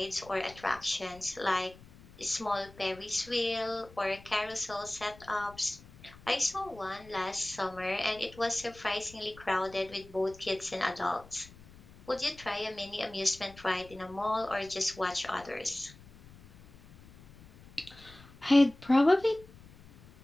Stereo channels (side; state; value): left; noise; rumble, 21 dB below the sound